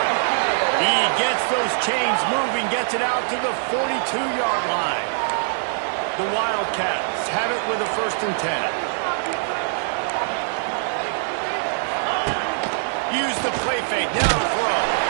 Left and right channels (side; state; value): left; silent; digital silence